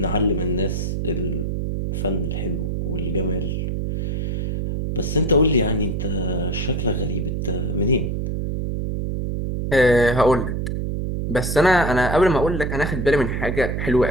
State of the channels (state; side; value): noise; right; hum, 1 dB below the sound